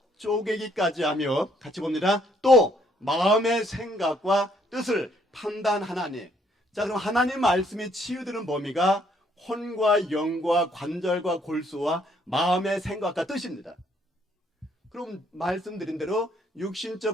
쪼개기까지 하며 같이 봅니다. 또 마음의 생각과 뜻을 판단하나니. 자, 그럼 하나님 말씀이 치유되는 범위가 혼과 영과 관절과 골수와 마음의 생각과 뜻입니다. 그럼 말씀드린 대로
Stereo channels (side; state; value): both; normal; correlation 0.68